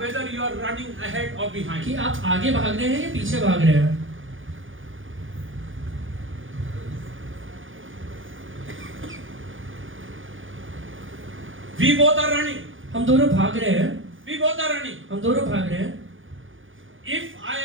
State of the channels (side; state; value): left; late; 0.57 ms